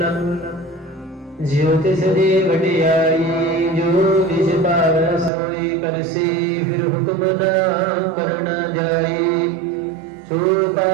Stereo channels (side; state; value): left; drops out; at 5.3 s